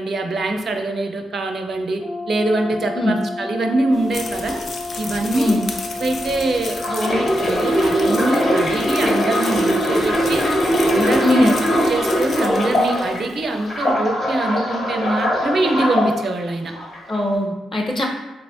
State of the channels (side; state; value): both; normal; correlation 0.85